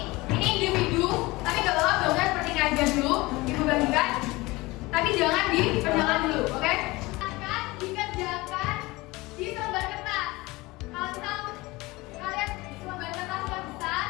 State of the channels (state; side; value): quieter; right; 21.7 dB